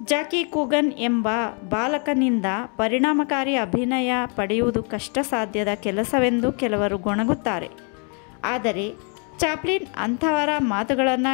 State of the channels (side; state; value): right; quieter; 38.5 dB